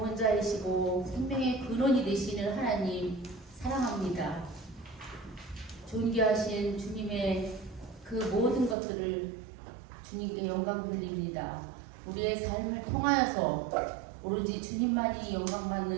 생명의 근원이 되시는 하나님 사랑합니다. 존귀하신 주님의 그 모든 것들을 주님께 영광 돌립니다. 우리의 삶을 통하여서 오로지 주님만이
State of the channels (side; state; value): left; drops out; at 8.8 s